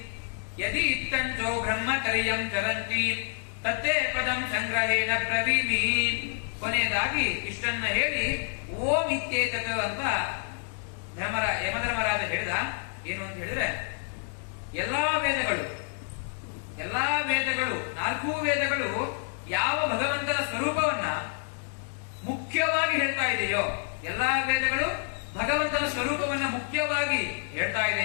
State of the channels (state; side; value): silent; right; 59 dB below the other